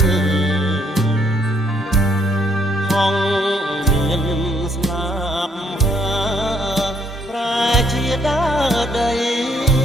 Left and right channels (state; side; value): normal; both; correlation 0.69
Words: ហងមានស្លាប់ហាប្រែជាដើដី